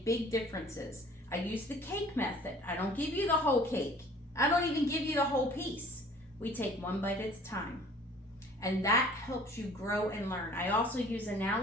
big differences. I use the cake method. I don't give you the whole cake. I don't even give you the whole piece. We take one bite at a time. And that helps you grow and learn. I also use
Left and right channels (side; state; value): both; normal; correlation 0.50